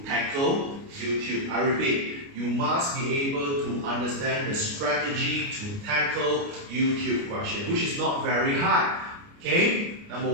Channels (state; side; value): late; left; 29 ms